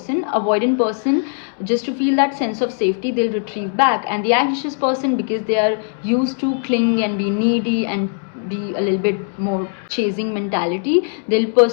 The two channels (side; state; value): right; silent; 66 dB below the other